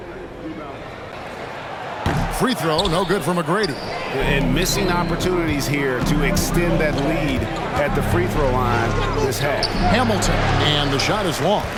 Free throw, no good for McGrady. And missing opportunities here to extend that lead at the free throw line this half. Hamilton, and the shot is long.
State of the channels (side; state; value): both; identical; correlation 1.00